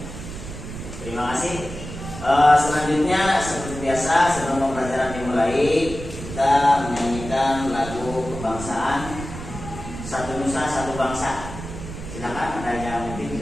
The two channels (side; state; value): right; noise; rumble, 10 dB below the sound